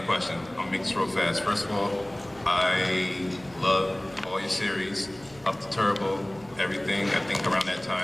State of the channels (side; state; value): right; noise; hum, 24 dB below the sound